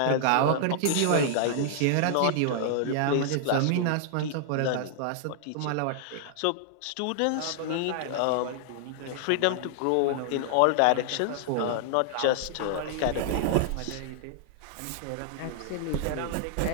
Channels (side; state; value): both; different; correlation -0.01